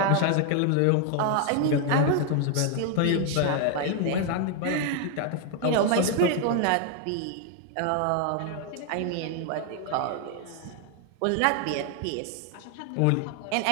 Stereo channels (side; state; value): both; different; correlation 0.00